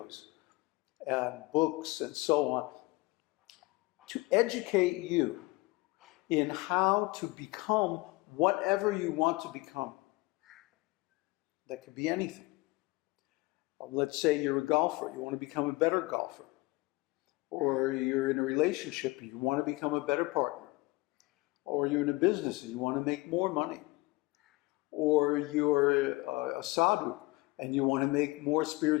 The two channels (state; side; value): quieter; right; 22.3 dB